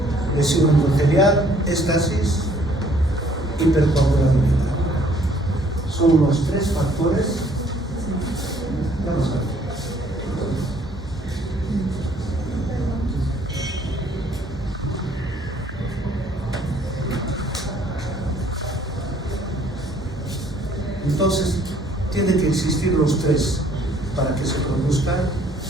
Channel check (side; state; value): both; normal; correlation 0.61